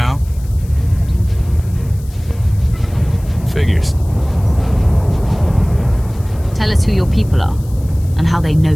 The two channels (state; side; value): noise; left; hiss, 24 dB below the sound